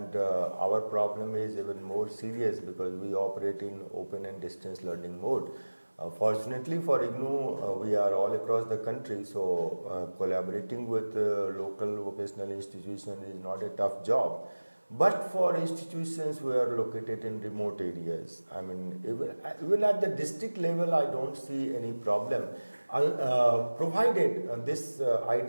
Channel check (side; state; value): both; inverted; correlation -1.00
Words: our problem is even more serious because we operate in open and distance learning mode. Fortunately for IGNOU, we are all across the country, so collaborating with local vocational institutions is not a tough job. But for institutions who are located in remote areas, I mean, even at the district level, I don't see any problem. Provided this